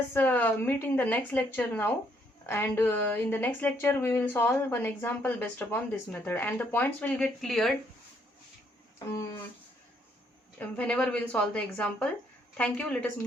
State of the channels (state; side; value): normal; both; correlation 0.70